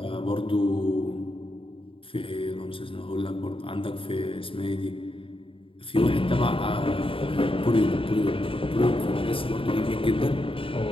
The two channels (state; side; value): late; right; 0.26 ms